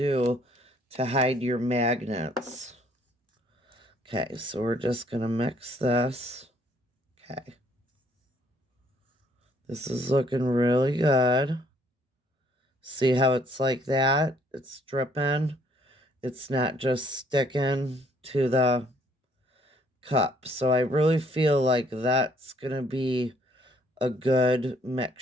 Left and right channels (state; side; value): normal; both; correlation 0.64